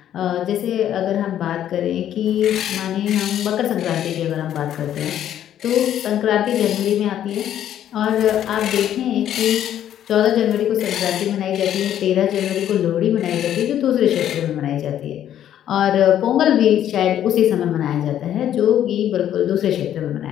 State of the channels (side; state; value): right; quieter; 10.9 dB